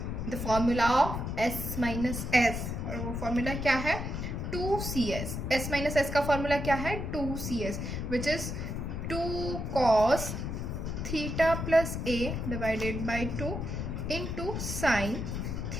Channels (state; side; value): noise; left; rumble, 4 dB below the sound